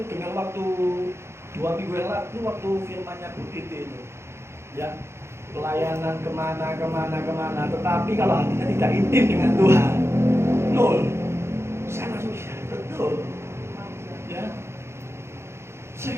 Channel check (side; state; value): left; late; 0.13 ms